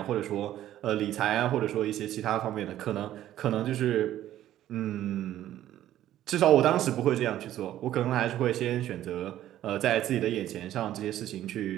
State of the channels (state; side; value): quieter; left; 12.7 dB